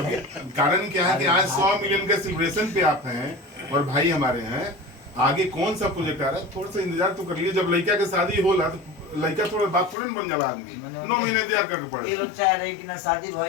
कारण क्या है कि आज 100 मिलियन के सेलिब्रेशन पे आप हैं और भाई हमारे हैं। आगे कौन सा प्रोजेक्ट आ रहा है, थोड़ा सा इंतजार तो कर लिए। जब लड़का के शादी होला तो लड़का थोड़ा बात थोड़े न बन जाला आदमी, 9 महीने इंतजार करके पड़े। ये लोग चाह रहे हैं कि ना शादी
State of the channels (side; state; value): right; drops out; at 10.0 s